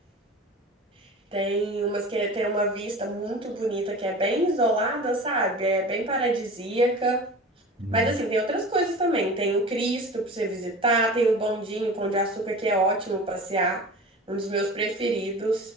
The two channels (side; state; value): both; normal; correlation 0.36